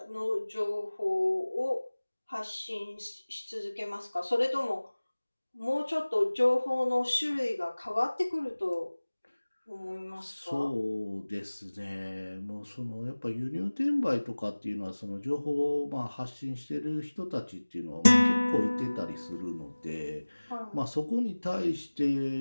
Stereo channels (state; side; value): inverted; both; correlation -1.00